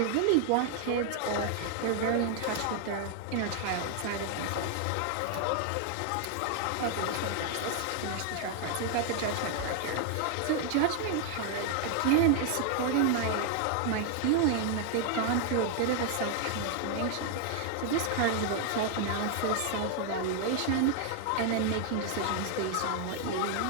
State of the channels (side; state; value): both; different; correlation 0.00